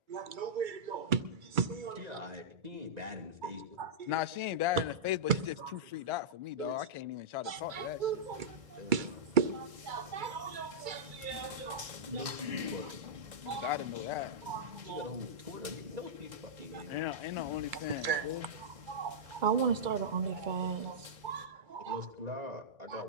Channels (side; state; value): left; late; 2.3 ms